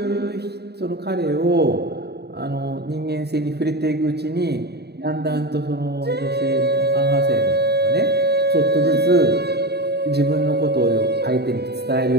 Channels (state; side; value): late; left; 0.48 ms